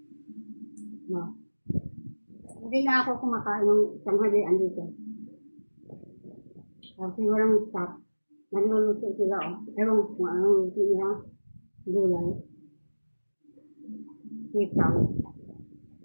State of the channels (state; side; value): inverted; both; correlation -1.00